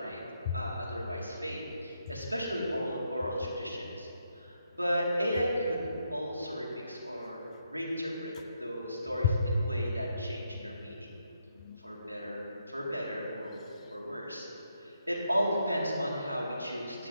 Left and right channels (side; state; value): both; inverted; correlation -0.79